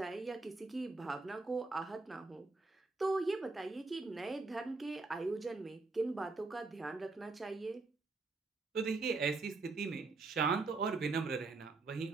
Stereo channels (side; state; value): left; quieter; 3.7 dB